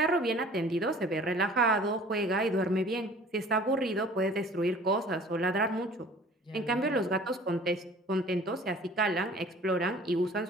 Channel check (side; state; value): both; normal; correlation 0.48